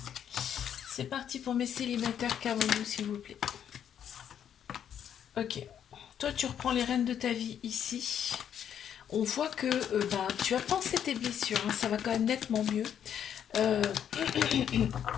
C'est parti pour mes célibataires, qu'avons-nous s'il vous plaît. Ok. Toi, tu reprends les rênes de ta vie ici. On voit que tu as pensé tes blessures. Hein, ça va quand même nettement mieux.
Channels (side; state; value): right; quieter; 9.1 dB